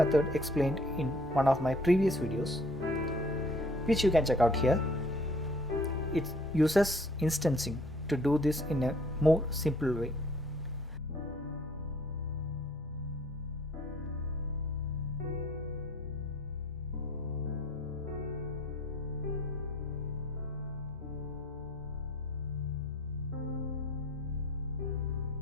explained in one of my previous videos, which you can check out here. It uses instancing to do this in a more simple way.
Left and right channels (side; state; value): both; normal; correlation 0.55